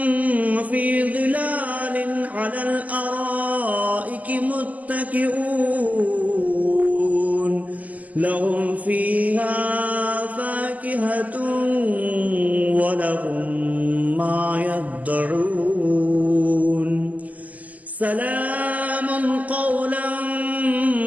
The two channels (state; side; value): late; left; 0.077 ms